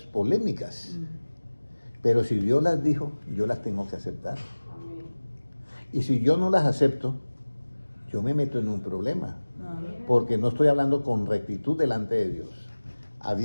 polémicas. Pero si Dios las dijo, yo las tengo que aceptar. Y si yo no las acepto, yo me meto en un problema. Porque no estoy hablando con rectitud delante de Dios.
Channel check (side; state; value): both; inverted; correlation -1.00